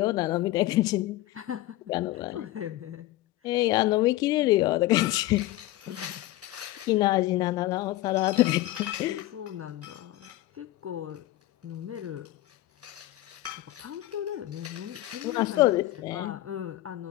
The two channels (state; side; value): quieter; right; 16.3 dB